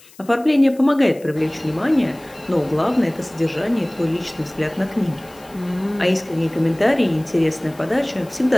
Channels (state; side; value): noise; left; hiss, 25 dB below the sound